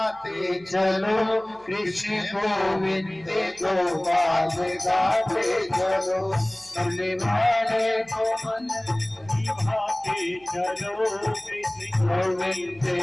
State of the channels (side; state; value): right; noise; hum, 28 dB below the sound